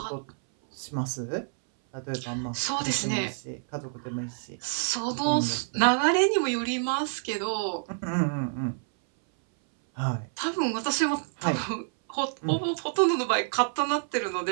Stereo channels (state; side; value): silent; left; 58 dB below the other